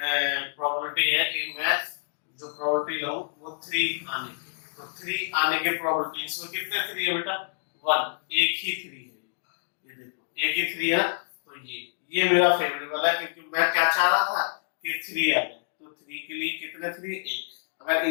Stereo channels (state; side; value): silent; right; digital silence